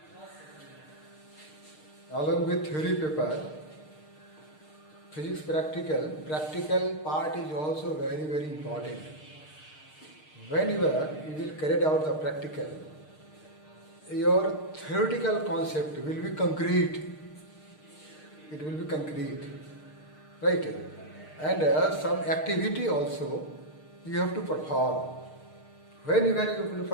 Along with theory paper, physics practical part is also very important. Whenever you will carry out the practical, your theoretical concept will be concrete. It will be concrete, right? And some activity also you have to perform. Whenever you will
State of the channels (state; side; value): late; right; 6.5 ms